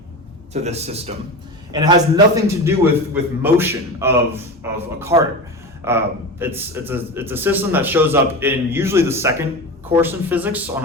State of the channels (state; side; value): normal; both; correlation 0.26